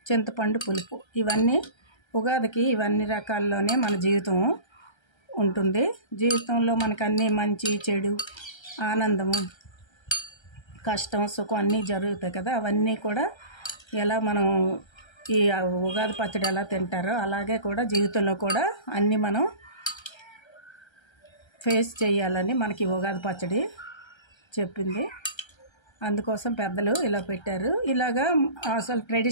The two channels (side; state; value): right; late; 1.3 ms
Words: చింతపండు పులుపు. ఇవన్నీ ఉగాదికి ఇవన్నీ రకాల్లోనే మన జీవితం ఉంటుంది. జీవితంలో మనకు అన్నీ మంచి చెడు, ఆనందము, కష్టం, సుఖం అన్నీ జరుగుతాయి కదా. అవన్నీ కూడా ఎలా మనం ఈ ఉగాది పచ్చడి ఎలా తింటారో అలాగే కూడా జీవితంలో కూడా అన్నీ మనం ఫేస్ చేయాలని మనకి ఉగాది పచ్చడి చెప్పింది. అందుకోసం పెద్దలు ఇలా పెట్టారు. ఇలాగా అసలు